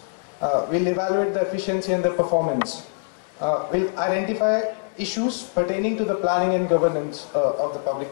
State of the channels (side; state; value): right; silent; digital silence